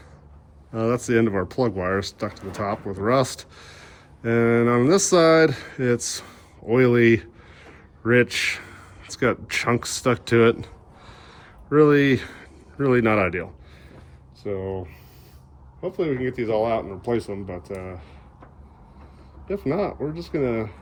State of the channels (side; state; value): both; identical; correlation 1.00